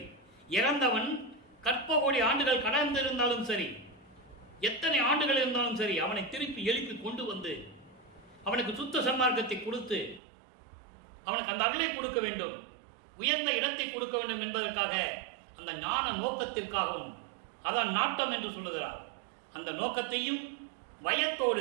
இறந்தவன் கற்ப கோடி ஆண்டுகள் கடந்திருந்தாலும் சரி, எத்தனை ஆண்டுகள் இருந்தாலும் சரி, அவனை திருப்பி எழுப்பி கொண்டு வந்து அவனுக்கு சுத்த சன்மார்க்கத்தை கொடுத்து அவனுக்கு அந்த அருளை கொடுக்க வேண்டும், உயர்ந்த இடத்தை கொடுக்க வேண்டும் என்பதற்காக, அந்த ஞான நோக்கத்திற்காகவும், அதான் நாட்டம் என்று சொல்லுகிறார். அந்த நோக்கத்தையும்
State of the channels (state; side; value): drops out; left; at 10.2 s